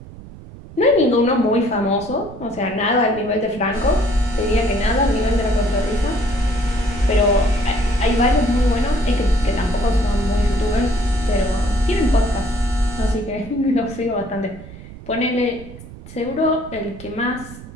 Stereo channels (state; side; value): noise; right; rumble, 16 dB below the sound